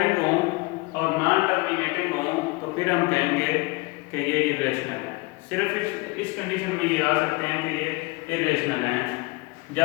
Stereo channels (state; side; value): quieter; right; 25.2 dB